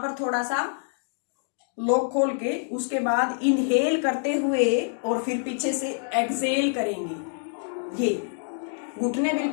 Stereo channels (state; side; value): silent; right; digital silence